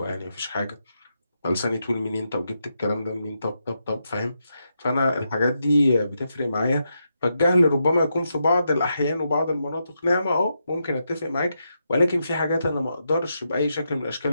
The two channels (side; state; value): both; inverted; correlation -0.83